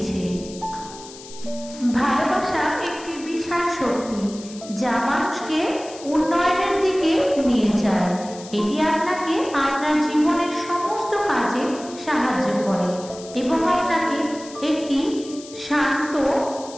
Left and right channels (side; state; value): left; noise; hiss, 17 dB below the sound